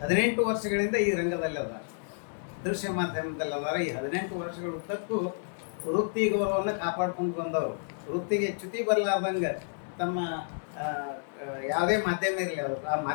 18 ವರ್ಷಗಳಿಂದ ಈ ರಂಗದಲ್ಲಿ ಅದ, ದೃಶ್ಯ ಮಾಧ್ಯಮದಲ್ಲಿ ಅದಾರ. ಈ 18 ವರ್ಷಗಳ ಉದ್ದಕ್ಕೂ ವೃತ್ತಿ ಗೌರವವನ್ನು ಕಾಪಾಡ್ಕೊಂಡು ಬಂದವರು. ವೃತ್ತಿಗೆ ಚ್ಯುತಿ ಬರಲಾರ್ದಂಗೆ ತಮ್ಮ ಯಾವುದೇ ಮಾಧ್ಯಮ ಇರಲಿ ಅದು ಆ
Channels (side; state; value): right; silent; digital silence